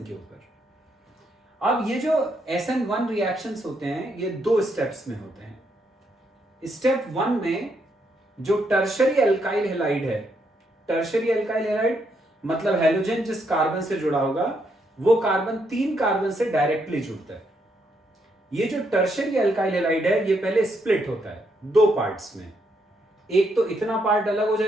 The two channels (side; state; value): both; normal; correlation 0.76